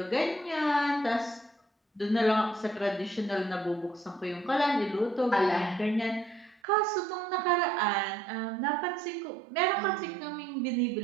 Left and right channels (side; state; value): left; drops out; at 6.6 s